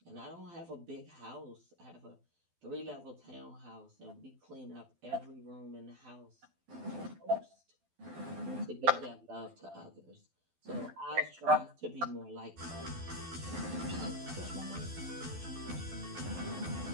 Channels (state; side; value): late; left; 12 ms